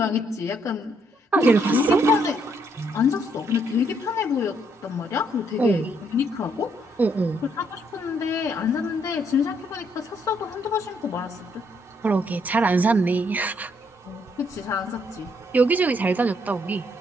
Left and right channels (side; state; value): both; normal; correlation 0.72